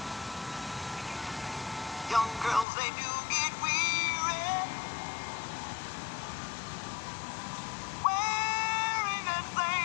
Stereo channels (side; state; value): right; drops out; at 2.7 s